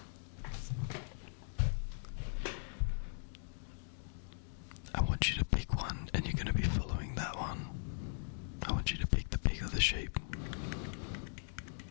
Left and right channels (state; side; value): silent; right; digital silence